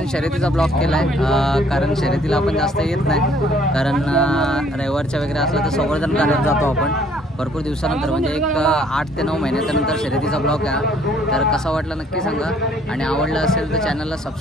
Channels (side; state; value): both; normal; correlation 0.61